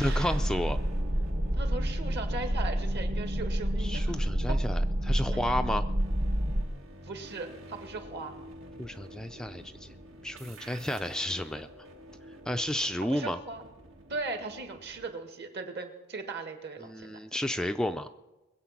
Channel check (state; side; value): normal; both; correlation 0.85